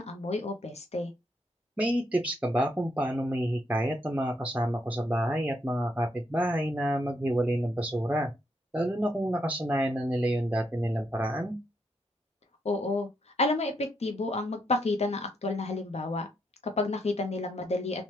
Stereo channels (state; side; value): normal; both; correlation 0.77